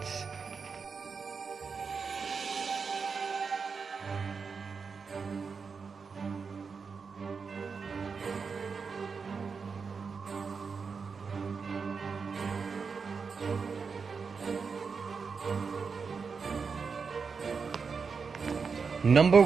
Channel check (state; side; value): quieter; left; 5.3 dB